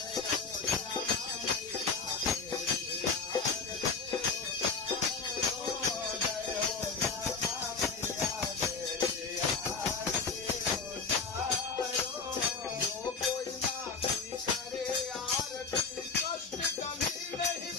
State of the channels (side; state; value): right; quieter; 4.9 dB